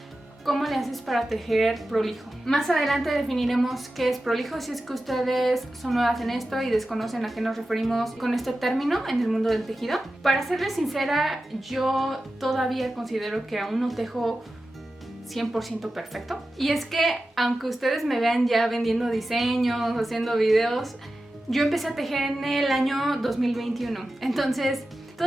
¿cómo le haces para tejer prolijo? Más adelante definiremos qué es prolijo si es que ustedes son nuevas en esto y desconocen a qué nos referimos con este término en el mundo del tejido. Para serles sincera, yo todavía considero que aún no tejo 100% perfecto. Y es que aunque ustedes me vean ya vendiendo diseños, haciendo videos, yo empecé a tejer en el año 2021. Entonces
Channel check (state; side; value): normal; both; correlation 0.93